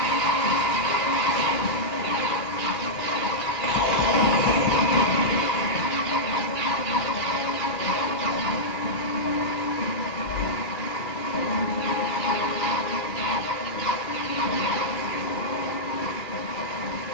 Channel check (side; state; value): right; late; 2.0 ms